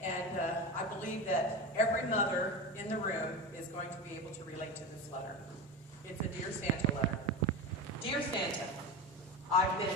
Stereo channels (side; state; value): both; normal; correlation 0.23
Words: I believe that every mother in the room is going to be able to relate to this letter. It's a Dear Santa letter. Dear Santa, I've been